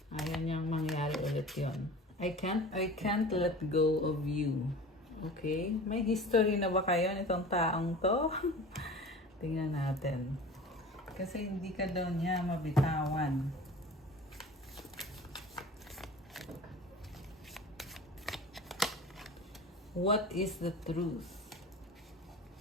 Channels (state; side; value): normal; both; correlation 0.39